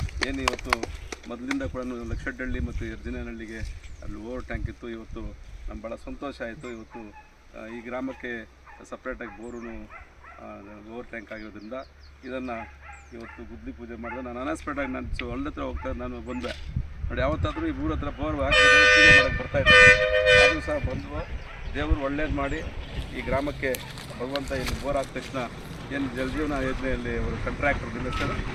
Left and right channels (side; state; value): both; identical; correlation 1.00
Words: ಏನು ಇವತ್ತು ಮೊದಲಿಂದ ಕೂಡ ಲಕ್ಷಡ್ಡಳ್ಳಿ ಮತ್ತು ಯಜ್ಜನಹಳ್ಳಿಗೆ ಅಲ್ಲಿ ಓವರ್ ಟ್ಯಾಂಕ್ ಇತ್ತು. ಇವತ್ತು ನಮ್ಗೆ ಭಾಳ ಸಂತೋಷ ಆಯಿತು. ಇವತ್ತು ಈ ಗ್ರಾಮಕ್ಕೆ ಸಪ್ರೇಟಾಗಿ ಬೋರು ಓವರ್ ಟ್ಯಾಂಕ್ ಆಗಿರೋದ್ರಿಂದ ಇದನ್ನು ಇವತ್ತು ಗುದ್ಲಿ ಪೂಜೆ ಮಾಡಿದೆ. ನಾನು ಅನಸ್ಪೆಕ್ಟಾಗಿ ನಾನು ಹೊಲ್ದ ಹತ್ರ ಹೋಗ್ತಾ ನಾನು ಬಂದೆ ನೋಡಿ, ಯಾವತ್ತಾದರೂ ಈ ಊರ ಹತ್ರ ಬೋರ್ ಹಾಕ್ಬೇಕಾದ್ರೆ ಪೂಜೆ ಮಾಡೋಕ್ಕೆ ಬರ್ತಾಯಿದ್ದೆ. ಆದರೂ ಸಹ ಬಂದು ದೇವರು ಒಳ್ಳೇದು ಮಾಡಿ ಈ ಗ್ರಾಮಕ್ಕೆ ಭಗವಂತ ಇಲ್ಲಿ ಬೋರ್ ಆದ ತಕ್ಷಣ ಏನು ಜಲಜೀವನ ಯೋಜನೆಯಲ್ಲಿ ಅವರು ಕಾಂಟ್ರಾಕ್ಟರ್ ನಿಮ್ಮ ಹೆಸರು